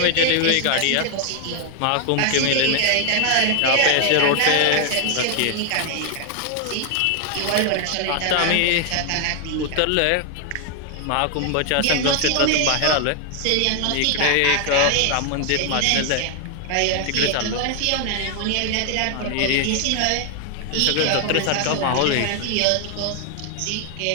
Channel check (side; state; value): both; different; correlation 0.00